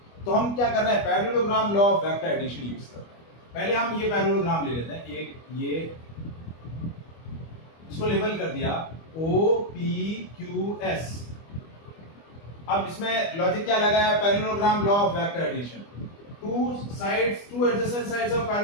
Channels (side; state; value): right; late; 25 ms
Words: तो हम क्या कर रहे हैं? Parallelogram law of vector addition use कर रहे हैं। पहले हम ये पैरेललोग्राम ले लेते हैं, एक ये इसको लेबल कर दिया OPQS। अब इसमें लॉजिक क्या लगाया? Parallelogram law of vector addition. two adjacent sides of